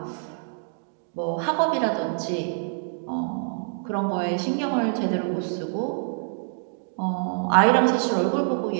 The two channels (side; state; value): left; silent; digital silence